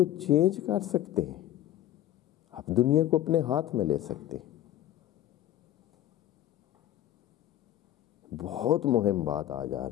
چینج کر سکتے ہیں. آپ دنیا کو اپنے ہاتھ میں لے سکتے ہیں. بہت مہم بات آج آ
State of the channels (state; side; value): quieter; right; 12.9 dB